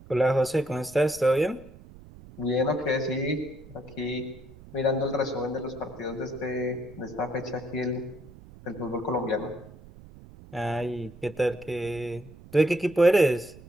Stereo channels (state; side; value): noise; right; rumble, 19 dB below the sound